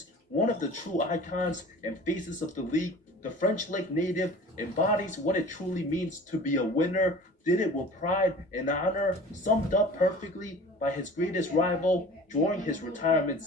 One of the true icons and faces of the league, the French Lick native, embodies what it truly means to be a winner, did it with pride and honor, summed up perfectly by his greatest rival during his retirement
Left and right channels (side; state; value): both; normal; correlation 0.43